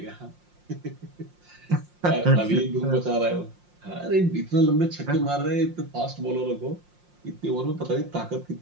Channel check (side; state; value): left; late; 5.6 ms